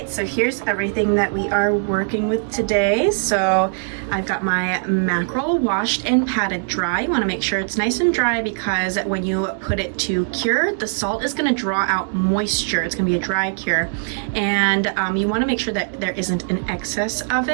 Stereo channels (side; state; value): left; silent; digital silence